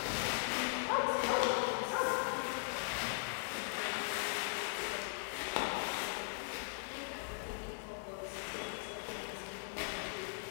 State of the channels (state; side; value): silent; right; digital silence